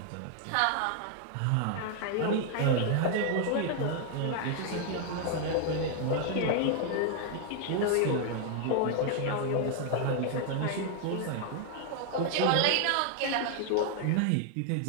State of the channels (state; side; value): different; both; correlation 0.00